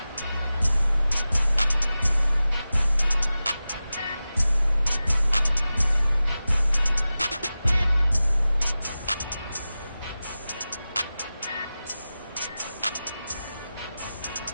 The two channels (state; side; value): inverted; both; correlation -0.95